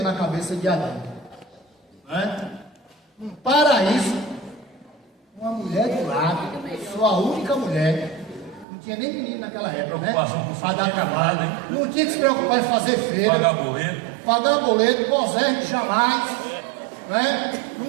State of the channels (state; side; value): drops out; left; at 8.7 s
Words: na cabeça de Adão, não é? Um paraíso, uma mulher do lado, sua única mulher. Não tinha nem menino naquela época, né? Para dar trabalho, né? Não tinha que se preocupar em fazer feira, pagar boleto, gozar jamais, né?